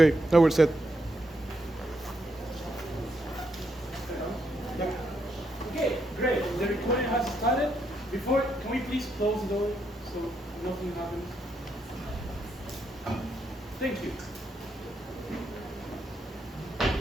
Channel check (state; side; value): normal; both; correlation 0.79